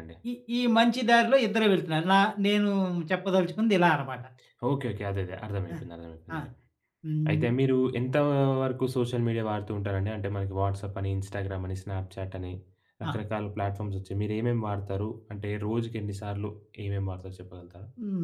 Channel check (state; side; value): identical; both; correlation 1.00